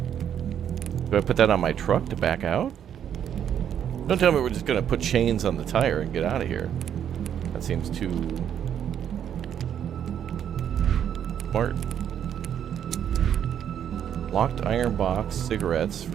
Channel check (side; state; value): left; quieter; 9.3 dB